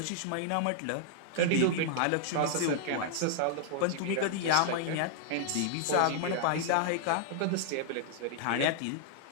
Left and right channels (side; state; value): both; different; correlation -0.01